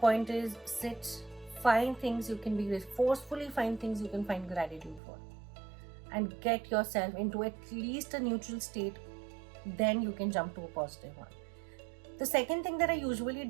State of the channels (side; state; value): left; drops out; at 5.0 s